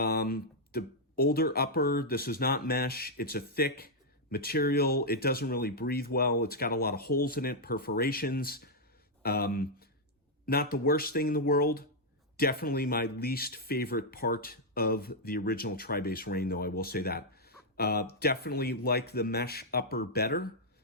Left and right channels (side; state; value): both; normal; correlation -0.04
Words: older upper, this is not mesh, it's a thick material, it doesn't really breathe well, it's got a lot of holes in it, perforations. Not the worst thing in the world, definitely my least favorite part of the original TriBase Reign, though, I will say that. Definitely like the mesh upper better.